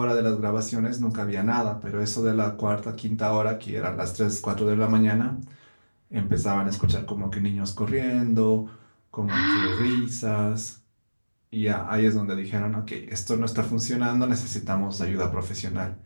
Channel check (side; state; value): both; inverted; correlation -1.00